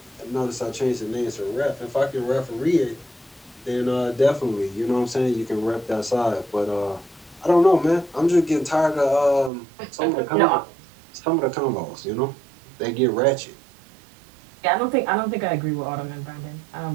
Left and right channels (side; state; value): left; drops out; at 9.5 s